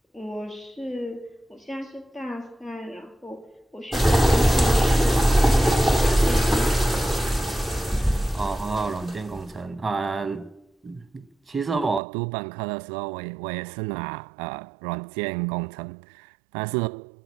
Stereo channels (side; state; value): left; drops out; at 12.0 s